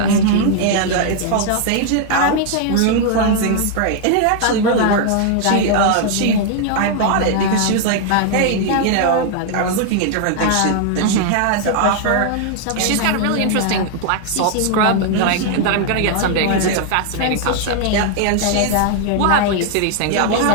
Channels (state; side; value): different; both; correlation 0.00